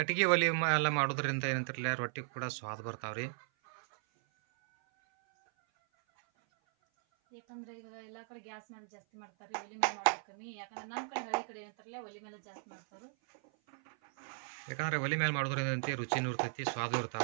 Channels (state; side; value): silent; left; 53 dB below the other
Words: ಒಲಿ ಎಲ್ಲ ಮಾಡೋದ್ರಿಂದ ಏನಂತಿರಲ್ಲ ರೊಟ್ಟಿ ಕೂಡ ಸ್ವಾದ ಬರ್ತಾವ್ರಿ. ಯಾಕಂದ್ರೆ ಈಗ ಎಲ್ಲಾ ಕಡೆ ಗ್ಯಾಸ್ ಮೇಲೆ ಜಾಸ್ತಿ ಮಾಡ್ತಾರೆ, ಒಲಿ ಮೇಲೆ ಮಾಡೋದು ಕಮ್ಮಿ. ಯಾಕಂದ್ರೆ ನಮ್ಮ ಕಡೆ ಹಳ್ಳಿ ಕಡೆ ಏನಂತಾರಲ್ಲ ಒಲಿ ಮೇಲೆ ಜಾಸ್ತಿ ಮಾಡ್ತಾರೆ. ಯಾಕಂದ್ರೆ ಒಲಿ ಮೇಲೆ ಮಾಡೋದ್ರಿಂದ ರುಚಿನೂ ಇರ್ತೈತಿ, ಸ್ವಾದ